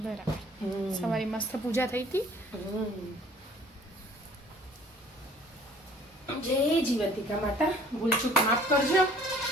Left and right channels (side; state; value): both; normal; correlation 0.53